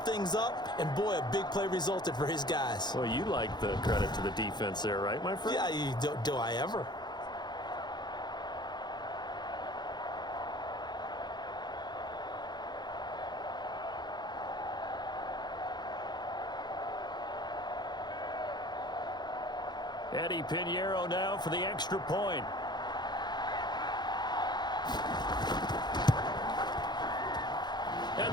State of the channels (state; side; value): late; right; 0.21 ms